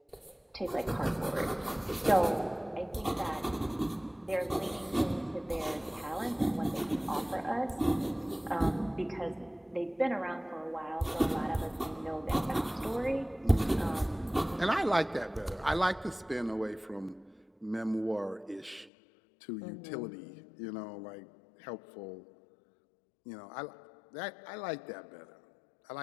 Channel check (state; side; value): drops out; right; at 18.9 s